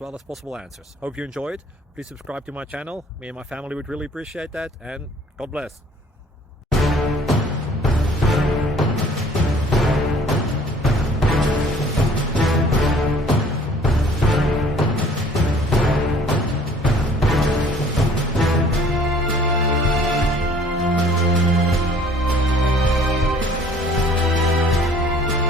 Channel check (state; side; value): normal; both; correlation 0.54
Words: as possible answers. Hope you enjoyed. Please subscribe to my channel. Me and my family would really appreciate that, and God bless.